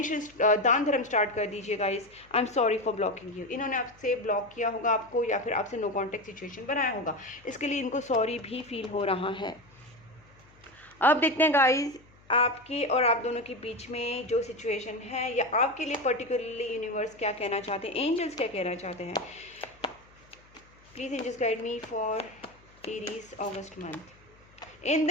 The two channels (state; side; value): noise; left; hum, 28 dB below the sound